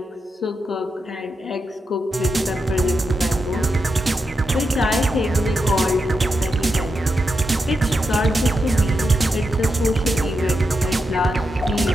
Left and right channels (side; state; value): both; normal; correlation 0.86